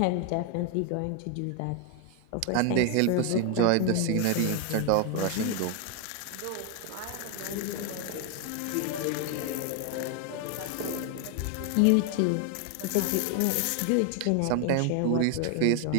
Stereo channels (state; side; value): different; both; correlation 0.01